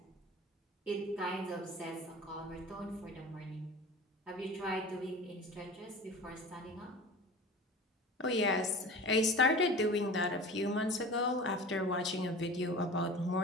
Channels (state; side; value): normal; both; correlation 0.37